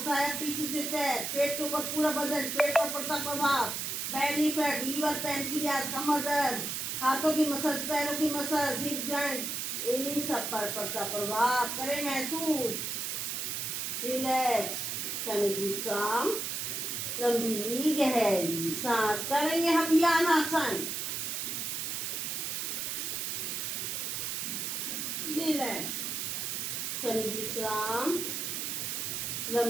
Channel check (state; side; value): noise; right; hiss, 2 dB below the sound